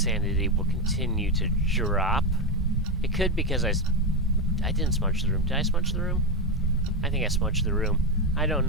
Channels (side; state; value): both; normal; correlation 0.10